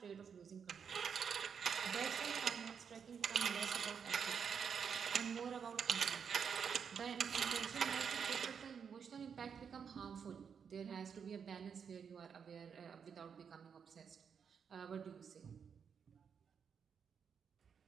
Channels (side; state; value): left; quieter; 6.9 dB